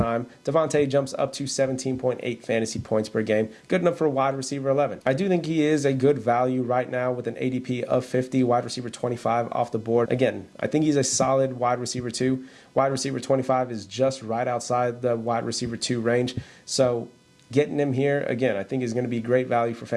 Devontae jumps up to 17.8 fantasy points per game, good enough for wide receiver 11. I do think he is a good value right now with an ADP of 50, wide receiver 25 off the board. Again, I think he's a solid wide receiver 2. Wide receiver 25 is just right outside the wide receiver 2 range, so getting him here, again, I think is going to be great value for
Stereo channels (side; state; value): both; identical; correlation 1.00